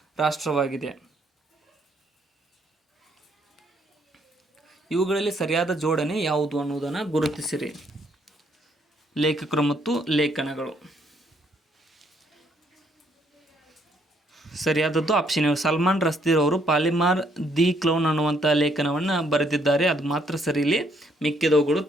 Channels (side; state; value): both; normal; correlation 0.69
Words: ರಾಷ್ಟ್ರವಾಗಿದೆ. ಇವುಗಳಲ್ಲಿ ಸರಿಯಾದ ಜೋಡಣೆ ಯಾವುದು ಅನ್ನುವುದನ್ನು ಗುರುತಿಸಿರಿ. ಲೇಖಕರು ಮತ್ತು ಲೇಖನಗಳು. ಸರಿಯಾದದ್ದು ಆಪ್ಷನ್ ಎ. ಸಲ್ಮಾನ್ ರಸ್ದೀರ್ ಅವರು ಪಾಲಿಮಾರ್ ದಿ ಕ್ಲೌನ್ ಅನ್ನುವಂಥ ಲೇಖನವನ್ನು ಬರೆದಿದ್ದಾರೆ. ಅದು ಮಾತ್ರ ಸರಿ, ಇಲ್ಲಿ ಮಿಕ್ಕಿದವುಗಳು